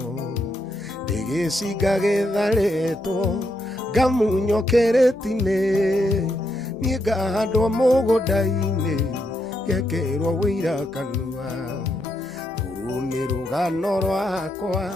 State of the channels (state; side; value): normal; both; correlation 0.80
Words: ndĩgĩcinga gĩtharĩtwo ngamunywo kĩrĩti-inĩ niĩ ngahandwo mũgũnda-inĩ ngekĩrwo wĩira kanua. Rũrũ nĩ rũgano rwakwa